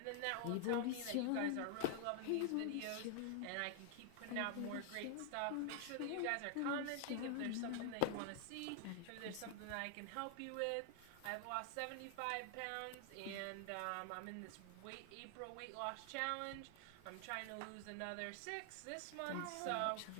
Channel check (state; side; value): different; both; correlation 0.00